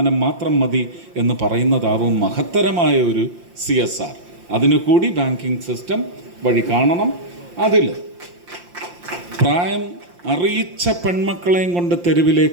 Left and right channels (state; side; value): late; left; 5.7 ms